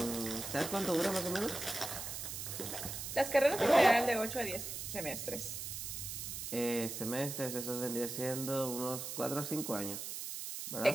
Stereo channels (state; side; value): noise; right; hiss, 6 dB below the sound